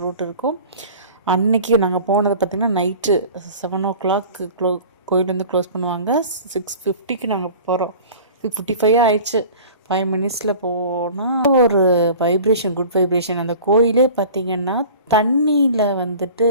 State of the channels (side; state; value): both; inverted; correlation -0.42